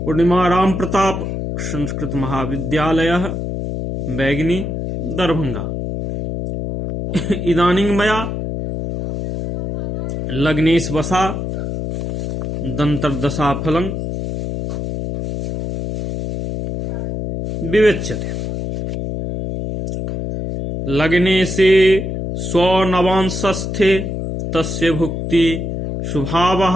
पूर्णिमा राम प्रताप संस्कृत महाविद्यालय बैगनी दरभंगा। इदानीं मया लग्नेश वसा दंतर्दशा फलं विवेच्यते। लग्ने से स्वनवांशस्थे तस्य भुक्ति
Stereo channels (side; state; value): left; noise; hum, 4 dB below the sound